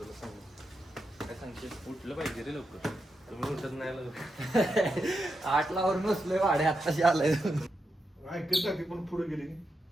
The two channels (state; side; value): normal; both; correlation 0.86